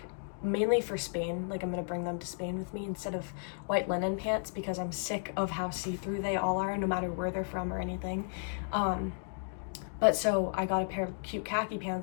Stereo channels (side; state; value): right; silent; digital silence